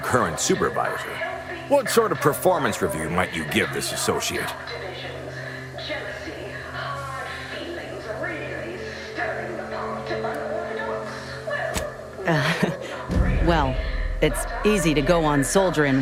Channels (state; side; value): identical; both; correlation 1.00